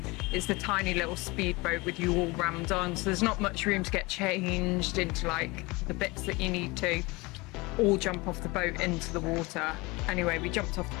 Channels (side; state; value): right; quieter; 24.1 dB